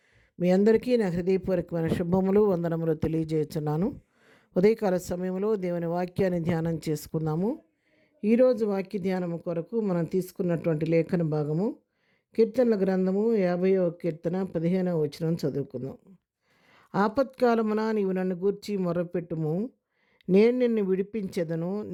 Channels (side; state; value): both; identical; correlation 1.00